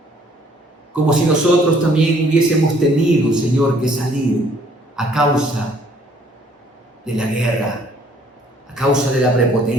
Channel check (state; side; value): normal; both; correlation 0.61